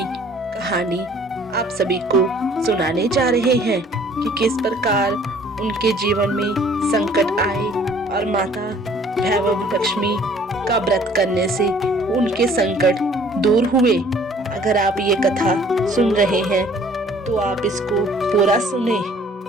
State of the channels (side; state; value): both; normal; correlation 0.55